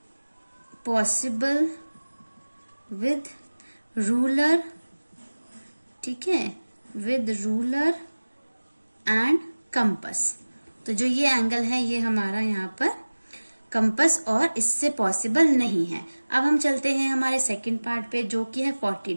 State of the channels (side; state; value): both; inverted; correlation -1.00